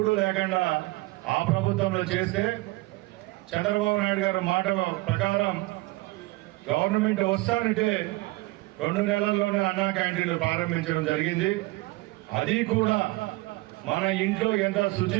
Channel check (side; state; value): left; quieter; 21.5 dB